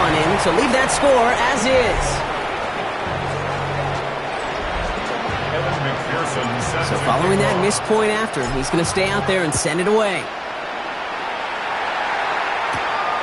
in. So leave that score as is. So following that missed point after, he's going to stay out there and send it away.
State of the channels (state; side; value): identical; both; correlation 1.00